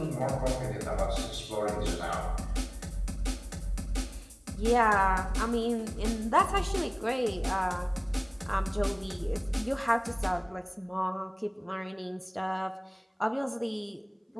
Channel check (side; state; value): both; identical; correlation 1.00